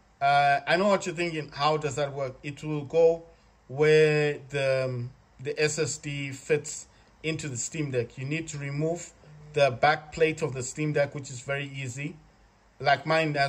I know what you're thinking. How does that work? It will go where the SSD fits into the Steam Deck. You need to remove the back plate of the Steam Deck, which is very easy. Like mine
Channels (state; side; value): identical; both; correlation 1.00